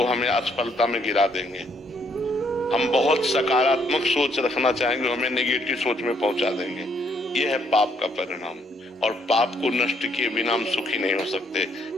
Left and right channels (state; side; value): normal; both; correlation 0.69